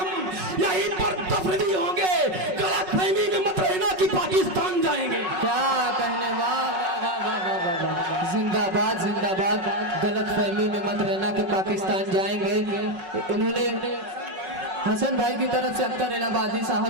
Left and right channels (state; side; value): late; left; 5.4 ms